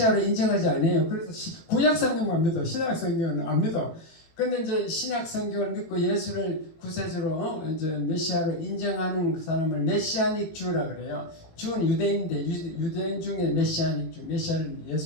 인정하지 않아요. 그래서 구약 성경만 믿어. 신약 성경은 안 믿어. 근데 이제 신약 성경을 믿고 예수를 구세주로 이제 메시아로 인정하는 그 사람을 메시아닉 주라 그래요. 주는 유대인인데 유대인 중에 메시아닉 주, 메시아를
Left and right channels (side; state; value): right; late; 18 ms